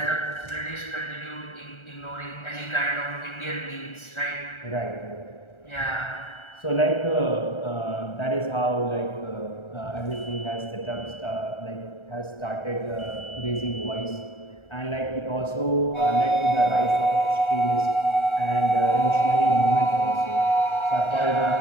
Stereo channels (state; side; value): late; right; 1.4 ms